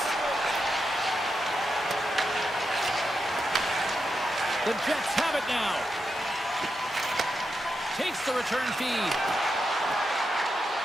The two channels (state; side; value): normal; both; correlation 0.86